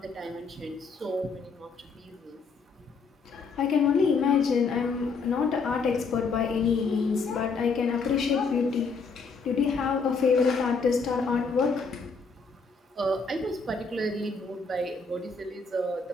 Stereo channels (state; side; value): quieter; right; 4.6 dB